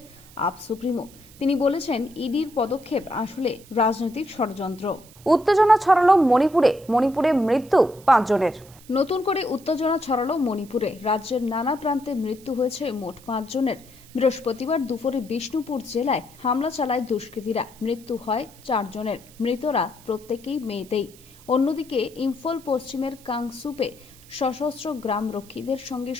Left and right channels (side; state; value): right; noise; hiss, 23 dB below the sound